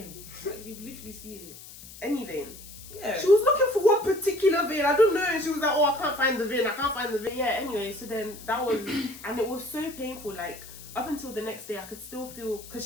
Like, you literally see it. Any vein? Yeah. She was looking for one particular vein. I don't know. And she was like, oh, I can't find the vein. I can't find the vein. Yeah, anyway, so then that was, and it was so painful. Like, up until the next day, I could still feel,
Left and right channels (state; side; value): noise; left; hiss, 16 dB below the sound